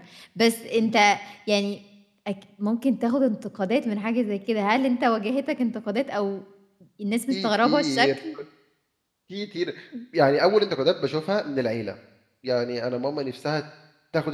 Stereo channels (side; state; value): both; identical; correlation 1.00